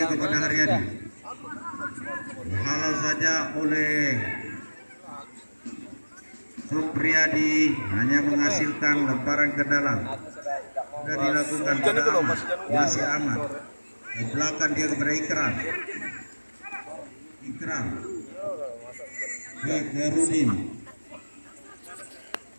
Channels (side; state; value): both; inverted; correlation -1.00